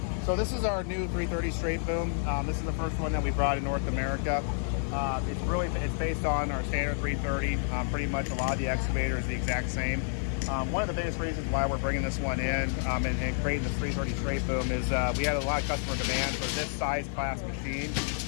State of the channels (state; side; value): silent; right; 58 dB below the other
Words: So this is our new 330 straight boom. This is the first one that we brought in North America. It's based on our standard 330. Pretty much a lot of the excavator is the exact same. One of the biggest reasons why we're bringing this one in and creating this 330 straight boom is we had a lot of customer demand for this size class machine